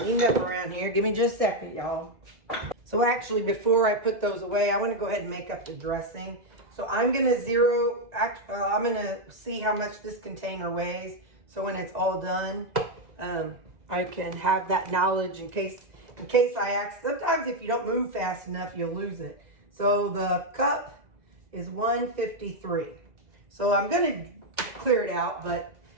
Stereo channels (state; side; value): late; left; 2.0 ms